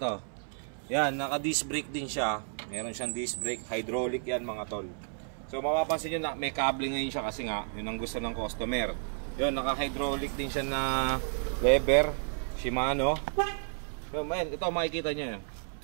Yan, naka disc brake din siya. Meron siyang disc brake, hydraulic yan mga tol. So mapapansin nyo na may kable ngayon siya kasi nga, yun ang gusto ng customer. Yun, naka hydraulic din siya na lever, Shimano. Yun, man, ito makikita nyo yun.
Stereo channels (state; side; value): silent; left; 57 dB below the other